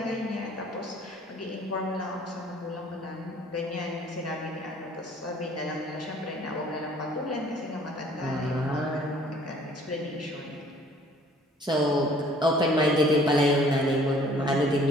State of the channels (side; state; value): both; normal; correlation 0.55